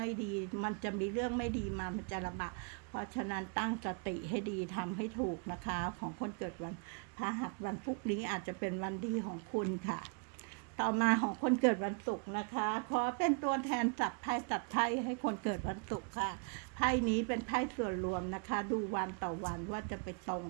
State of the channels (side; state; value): left; quieter; 36.8 dB